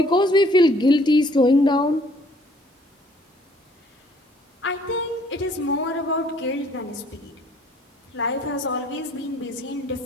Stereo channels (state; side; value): normal; both; correlation 0.60